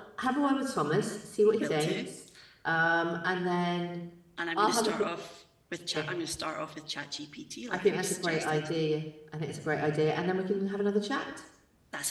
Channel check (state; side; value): identical; both; correlation 1.00